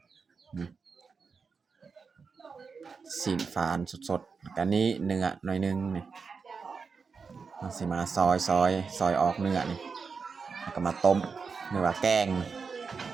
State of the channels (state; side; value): quieter; left; 5.2 dB